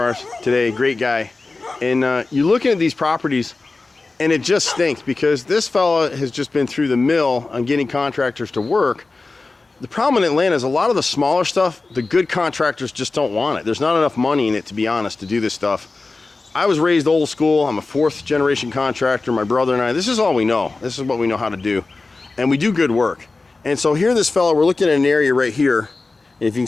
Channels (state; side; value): quieter; right; 3.6 dB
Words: today, great guy. And you're looking at these properties and it just stinks because this fella has just been through the mill on getting contractors to work. The problem in Atlanta is a lot of the smaller stuff, the good contractors just don't want it. There's not enough money in it, to be honest, to do this stuff. I was raised old school. I'm a fourth generation contractor. My brother and I, this is all we know. This is what we know how to do. And we do good work. And so here this fellow, we're looking at an area right here. If you can